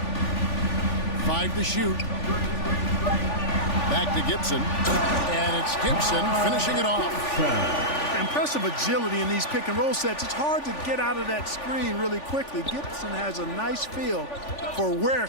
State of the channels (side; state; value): right; late; 3.5 ms